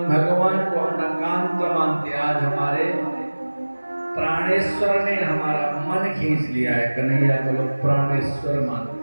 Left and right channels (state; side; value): inverted; both; correlation -1.00